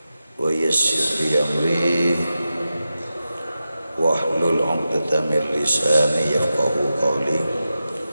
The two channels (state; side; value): inverted; both; correlation -0.91